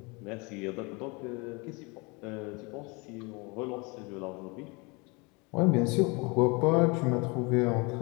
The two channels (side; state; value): right; quieter; 28.4 dB